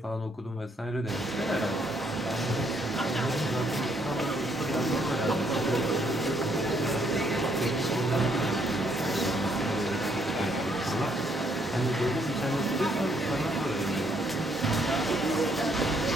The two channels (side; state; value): both; normal; correlation 0.70